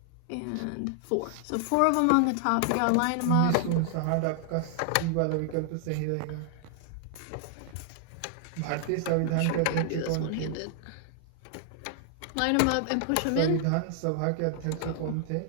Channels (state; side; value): different; both; correlation 0.00